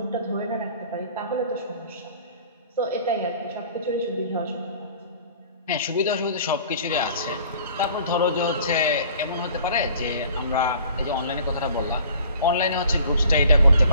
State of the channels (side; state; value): both; inverted; correlation -0.50